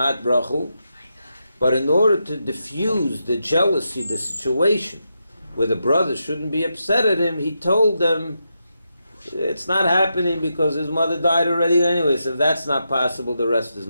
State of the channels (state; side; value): inverted; both; correlation -0.85